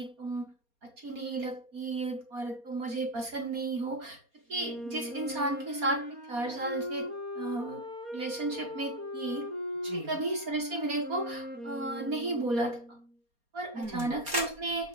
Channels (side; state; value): left; late; 4.2 ms